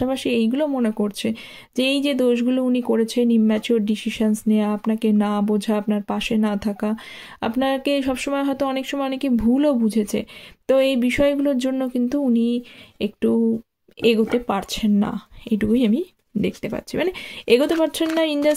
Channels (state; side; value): identical; both; correlation 1.00